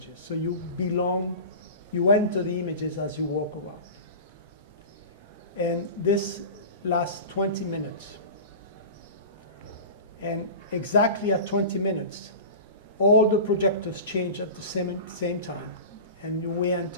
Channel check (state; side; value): inverted; both; correlation -0.32